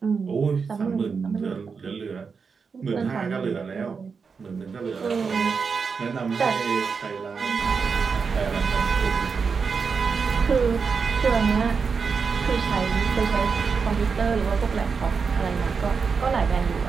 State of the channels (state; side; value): quieter; left; 5.4 dB